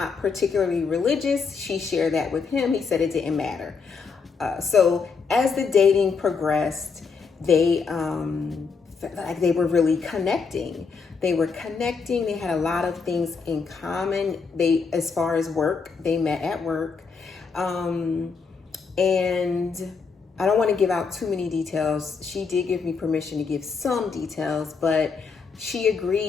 particularly religious. She shared that with him. He said it didn't matter. So as the dating progressed, they felt like they were really connecting. They were connecting. They had a lot of things in common. As far as work, they met at work. And I don't want to give out too many details. She did give me permission to give some details, but she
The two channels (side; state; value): right; quieter; 5.2 dB